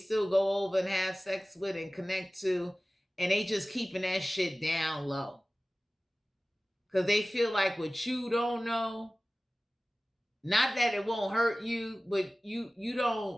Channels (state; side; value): normal; both; correlation 0.97